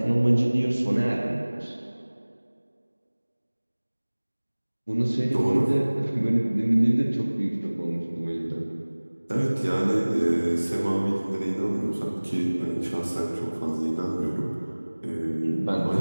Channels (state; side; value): inverted; both; correlation -1.00